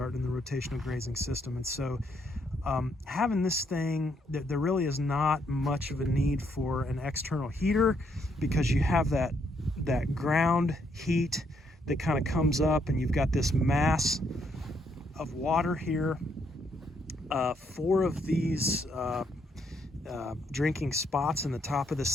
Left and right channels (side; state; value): both; normal; correlation 0.73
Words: the rotational grazing system. And so having this thing, there really is not much of a need for an external heater, because you have that ground heat that kind of comes up, and you've got this mass of water here. 4 of these drinking spots in the top of